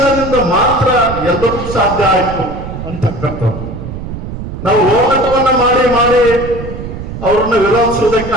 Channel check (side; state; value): right; noise; rumble, 9 dB below the sound